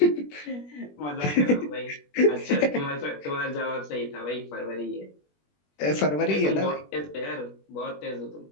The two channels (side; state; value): right; late; 21 ms